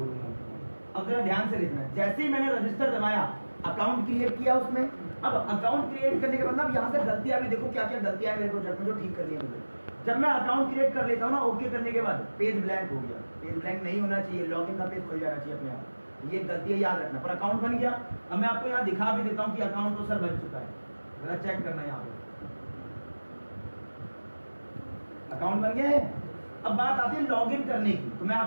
अब जरा ध्यान से देखना, जैसे ही मैंने रजिस्टर दबाया, अकाउंट क्रिएट किया उसमें, अब अकाउंट क्रिएट करने के बाद ना अब यहाँ से गलतियां भी देखो, क्या क्या गलतियां मेरे प्रोजेक्ट में जो ठीक करनी है मुझे। जब मैं अकाउंट क्रिएट कर लेता हूँ ना, ओके करने के बाद पेज ब्लैंक हो गया। पेज ब्लैंक नहीं होना चाहिए, लॉगिन का पेज खुल जाना चाहिए अपने आप। ये गलतियां याद रखना। पर अकाउंट बन गया। अब मैं आपको यहाँ दिखा भी देता हूँ कि अकाउंट तो सर बन चुका है, जरा चेक करना यहाँ पे। अकाउंट बन गया है। अब बात आती है लॉगिन करने की, तो मैं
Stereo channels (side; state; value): both; inverted; correlation -1.00